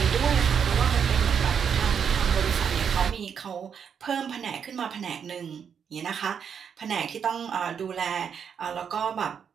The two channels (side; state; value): left; quieter; 7.3 dB